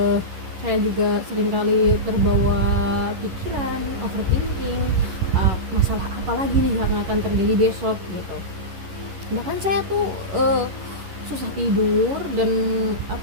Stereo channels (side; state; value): left; late; 11 ms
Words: Saya juga seringkali terbawa pikiran, overthinking, masalah apa lagi nih yang akan terjadi besok gitu. Bahkan saya tuh susah tidur dan